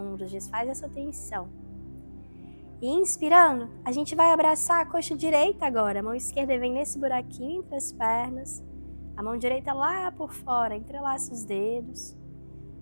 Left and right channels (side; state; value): both; inverted; correlation -1.00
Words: desfaz essa tensão. E inspirando, a gente vai abraçar a coxa direita agora. A mão esquerda vem nesse buraquinho entre as pernas. A mão direita lá por fora, entrelaça os dedos.